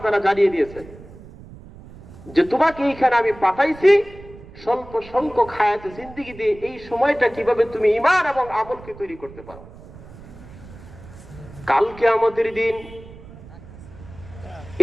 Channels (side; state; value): right; noise; rumble, 18 dB below the sound